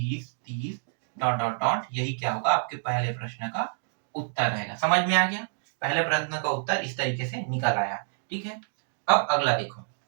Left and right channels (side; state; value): left; silent; digital silence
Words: 30 डॉट डॉट डॉट, यही क्या होगा, आपके पहले प्रश्न का उत्तर रहेगा। समझ में आ गया, पहले प्रश्न का उत्तर इस तरीके से निकल आया। ठीक है, अब अगला देखो,